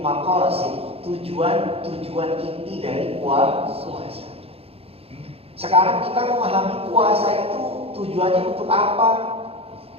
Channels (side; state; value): left; late; 0.28 ms